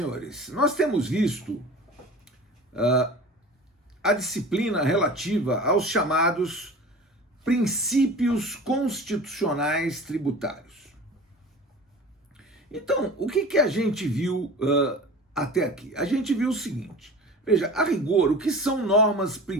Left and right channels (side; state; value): both; normal; correlation 0.38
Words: Nós temos visto a disciplina relativa aos chamados princípios constitucionais tributários. Então, o que a gente viu até aqui? A gente viu o seguinte: veja, a rigor, o que são